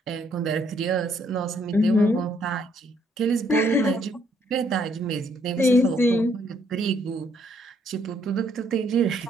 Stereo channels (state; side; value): normal; both; correlation 0.69